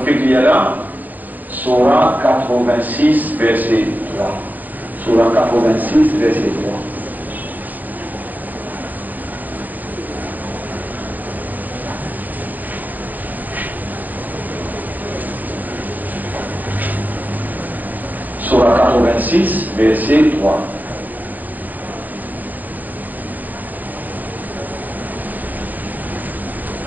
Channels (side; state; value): left; late; 0.085 ms